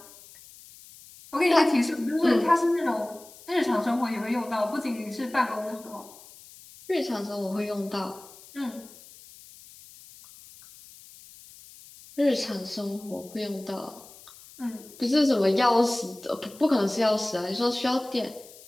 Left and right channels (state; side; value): noise; left; hiss, 21 dB below the sound